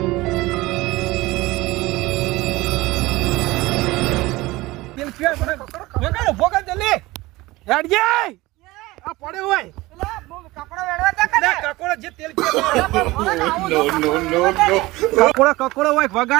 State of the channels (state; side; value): quieter; left; 20.0 dB